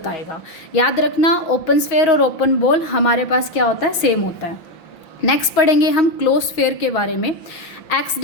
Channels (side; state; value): right; late; 5.8 ms